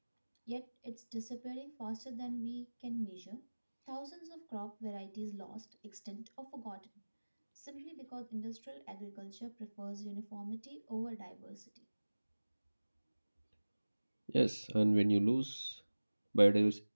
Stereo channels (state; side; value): inverted; both; correlation -1.00